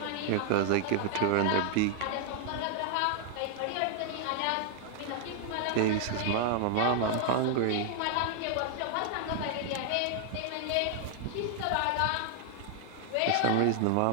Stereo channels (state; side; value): different; both; correlation 0.00